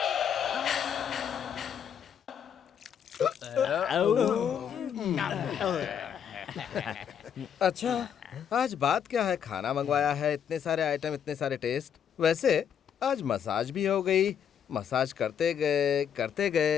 अच्छा, आज बात क्या है? खाना मंगवाया है, इतने सारे आइटम, इतने सारे टेस्ट। वैसे आज मसाज भी हो गई। मसाज करते गए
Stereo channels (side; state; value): right; quieter; 8.3 dB